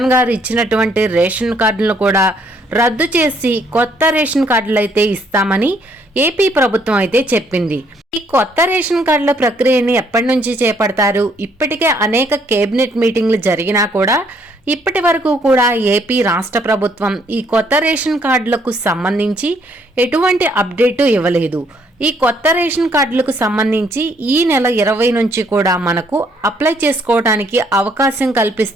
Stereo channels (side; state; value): both; normal; correlation 0.67